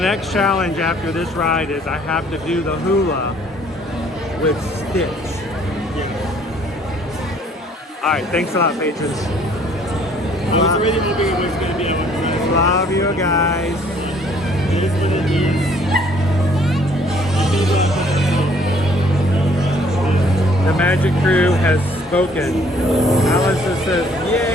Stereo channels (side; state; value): both; normal; correlation 0.60